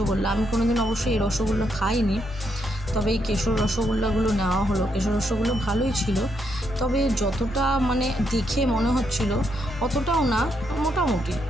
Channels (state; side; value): normal; both; correlation 0.78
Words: আমি কোনোদিন অবশ্যই এই রসগোল্লা খাইনি, তবে এই কেশর রসগোল্লাগুলো নেওয়া হলো। কেশর রসগোল্লা ভালোই ছিল, তবে যতটা মানে দেখে মনে হচ্ছিল অতটাও না, মোটামুটি